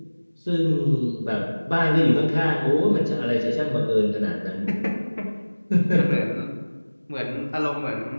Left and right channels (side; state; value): both; inverted; correlation -1.00